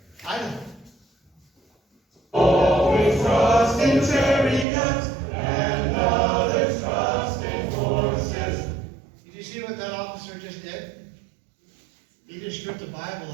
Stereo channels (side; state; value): left; drops out; at 4.7 s